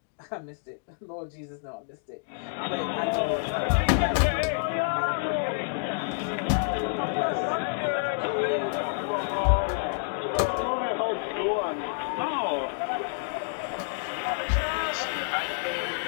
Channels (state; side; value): silent; right; digital silence